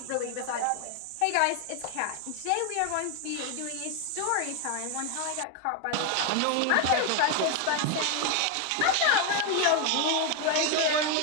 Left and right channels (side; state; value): both; different; correlation 0.01